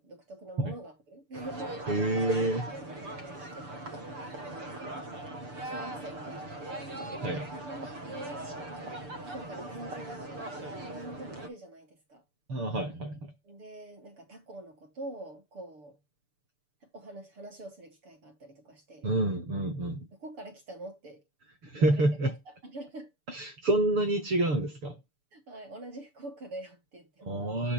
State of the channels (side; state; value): left; late; 6.9 ms